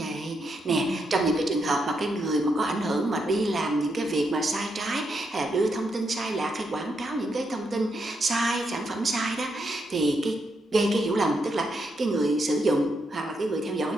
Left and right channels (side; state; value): both; normal; correlation 0.81